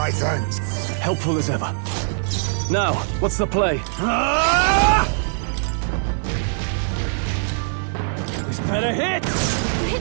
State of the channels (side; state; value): left; silent; digital silence